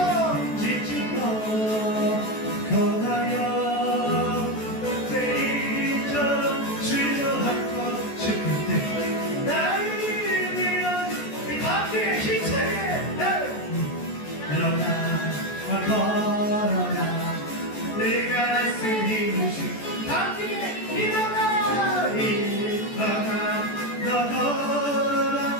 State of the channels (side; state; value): right; late; 14 ms